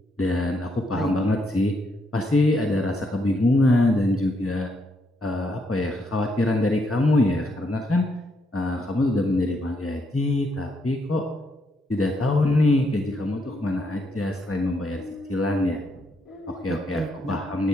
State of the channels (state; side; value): normal; both; correlation 0.76